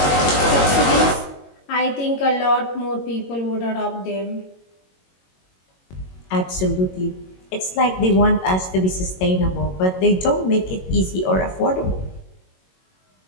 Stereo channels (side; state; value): right; late; 22 ms